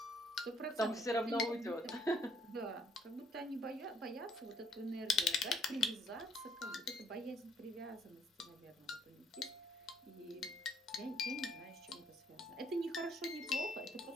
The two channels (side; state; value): both; normal; correlation 0.66